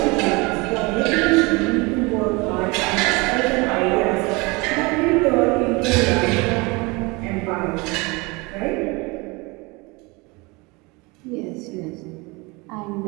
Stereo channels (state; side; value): quieter; left; 26.0 dB